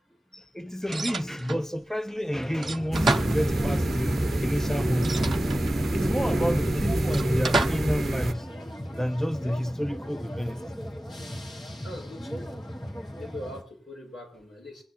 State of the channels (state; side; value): normal; both; correlation 0.94